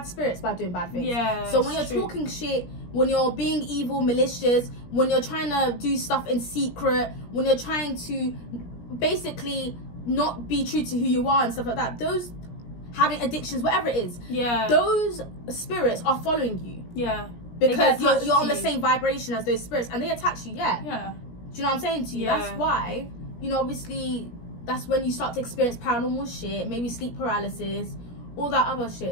spirits by doing bad things. Yeah. So when you're talking shit, when you're being evil, malicious, when you're trying to do stuff in secret, when you're trying to basically not be true to who you are and stuff like that, those having addictions, whatever it is, those spirits are following you. Yeah. Because you're on the same vibration as those spirits, and they attach you. Yeah. Do you know what I'm saying to you? Yeah. That's why, you know, obviously, that's when you start to experience paranormal shit, maybe sleep paralysis, all that other shit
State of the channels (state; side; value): late; right; 17 ms